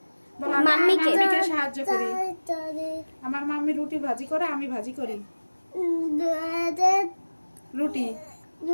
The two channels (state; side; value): inverted; both; correlation -1.00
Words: বলো আমি আমার মাম্মিকে। মাম্মিকে সাহায্য করি। আমার মাম্মি রুটি ভাজি করে, আমি ভাজি করি। রুটি